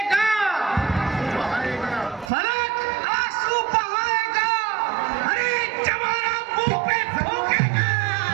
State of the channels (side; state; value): left; drops out; at 2.3 s